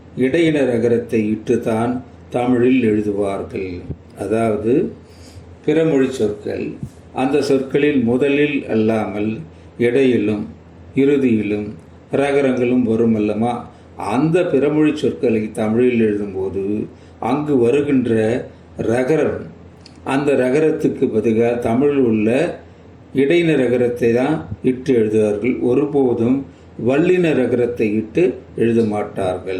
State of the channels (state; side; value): identical; both; correlation 1.00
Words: இடையின ரகரத்தை இட்டுத்தான் தமிழில் எழுதுவார்கள். அதாவது பிறமொழி சொற்கள் அந்த சொற்களில் முதலில் அல்லாமல் இடையிலும் இறுதியிலும் ரகரங்களும் வரும் அல்லமா, அந்த பிறமொழி சொற்களை தமிழில் எழுதும்போது அங்கு வருகின்ற ரகரம், அந்த ரகரத்துக்கு பதிலாக தமிழில் உள்ள இடையின ரகரத்தை தான் இட்டு எழுதுவார்கள். ஒருபோதும் வல்லின ரகரத்தை இட்டு எழுத